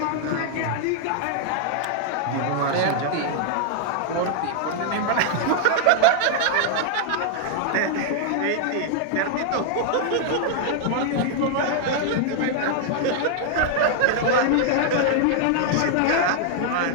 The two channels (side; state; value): both; different; correlation -0.01